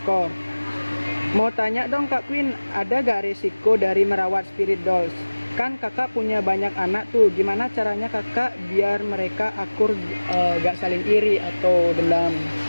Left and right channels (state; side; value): inverted; both; correlation -1.00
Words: Mau tanya dong Kak Queen, ada gak risiko dari merawat spirit dolls? Kan kakak punya banyak anak tuh, gimana caranya kakak biar mereka akur, gak saling iri atau dendam?